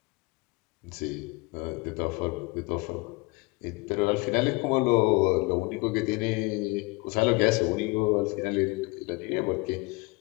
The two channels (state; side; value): quieter; right; 25.7 dB